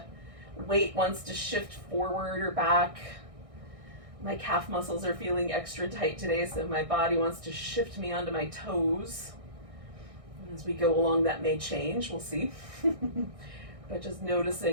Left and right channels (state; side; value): late; left; 1.6 ms